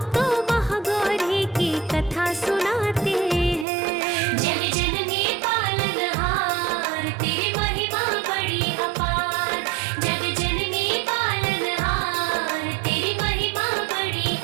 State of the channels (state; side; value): drops out; left; at 3.7 s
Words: महागौरी की कथा सुनाते हैं। जग जननी पालनहार तेरी महिमा बड़ी अपार, जग जननी पालनहार तेरी महिमा बड़ी